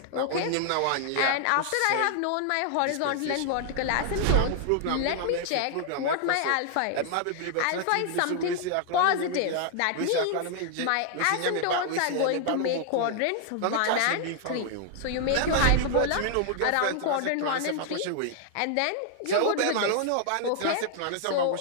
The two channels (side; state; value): both; different; correlation 0.00